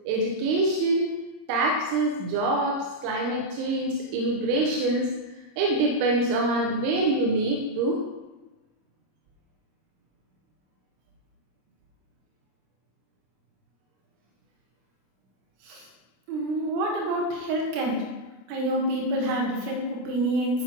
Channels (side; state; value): left; late; 26 ms